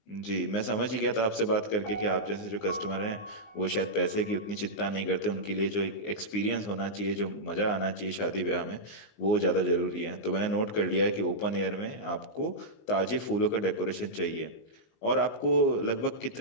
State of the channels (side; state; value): right; late; 19 ms